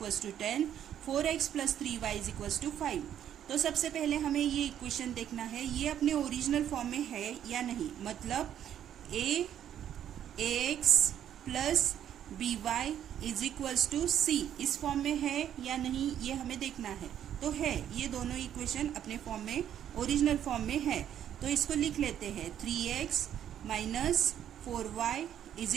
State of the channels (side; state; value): left; quieter; 10.2 dB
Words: to 10, 4x plus 3y is equals to 5। तो सबसे पहले हमें ये इक्वेशन देखना है, ये अपने ओरिजिनल फॉर्म में है या नहीं। मतलब ax plus by is equals to c इस फॉर्म में है या नहीं, ये हमें देखना है। तो है, ये दोनों इक्वेशन अपने फॉर्म में, ओरिजिनल फॉर्म में है। तो इसको लिख लेते हैं, 3x minus 4y is